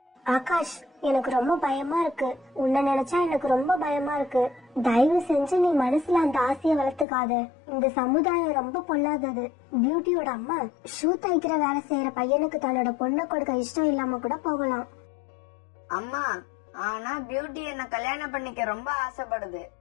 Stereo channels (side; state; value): right; drops out; at 7.1 s